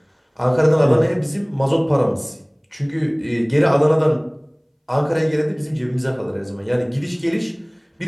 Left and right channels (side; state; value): both; identical; correlation 1.00